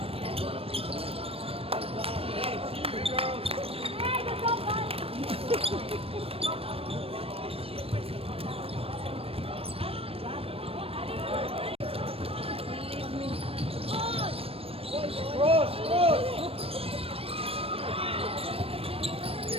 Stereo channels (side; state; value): left; late; 0.28 ms